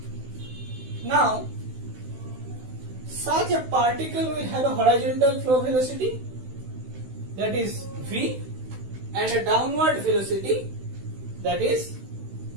Now, such a particle will have a horizontal flow velocity, that is v, and a downward velocity, that is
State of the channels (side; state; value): left; late; 16 ms